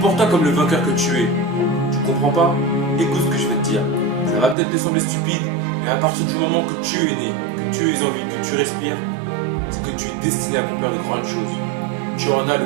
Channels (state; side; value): drops out; left; at 4.5 s